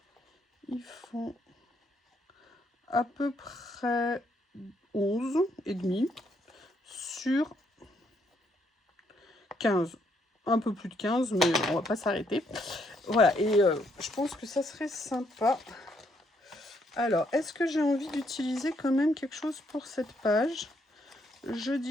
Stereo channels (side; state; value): both; normal; correlation 0.73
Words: Ils font à peu près 11 et demi sur 15. Un peu plus de 15, mais on va pas s'arrêter. Voilà, et je pense que ça serait sympa. Alors, est-ce que j'ai envie d'utiliser quand même quelque chose pour cette page? Je